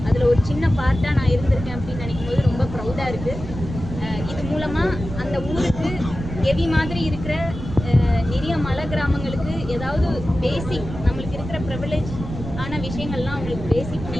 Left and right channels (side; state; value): right; noise; rumble, 9 dB below the sound